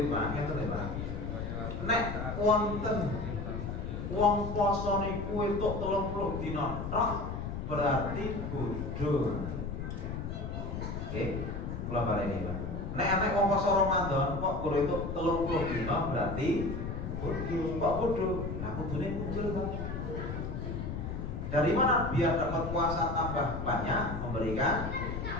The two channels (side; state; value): left; noise; rumble, 5 dB below the sound